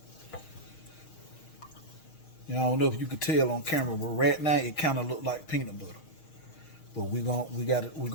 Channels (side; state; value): right; late; 6.4 ms